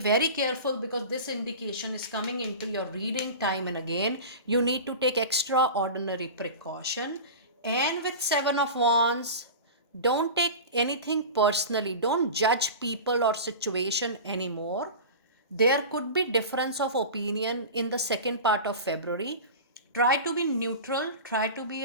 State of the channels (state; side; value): inverted; both; correlation -0.31